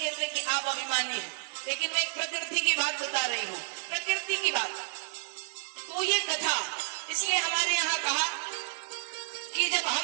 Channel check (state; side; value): silent; left; digital silence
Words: कि आप अभिमानी हैं, लेकिन मैं प्रकृति की बात बता रही हूँ, प्रकृति की बात। तो ये कथा इसलिए हमारे यहाँ कहा कि जब